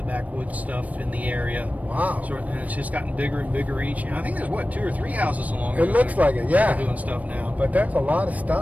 backwoods stuff in the area. Wow. So, and it's just gotten bigger and bigger each. And I think there's 2 or 3 houses along It looks like it, yeah. doing stuff now. But there's a lot of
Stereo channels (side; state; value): left; late; 0.071 ms